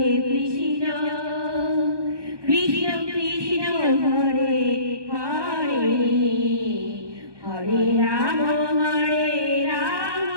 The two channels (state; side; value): late; left; 1.2 ms